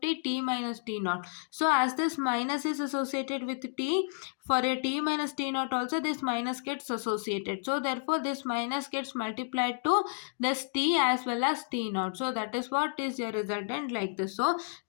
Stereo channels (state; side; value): silent; right; 57 dB below the other